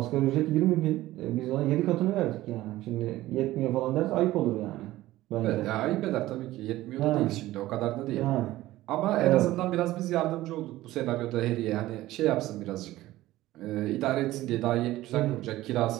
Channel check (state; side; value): quieter; left; 16.3 dB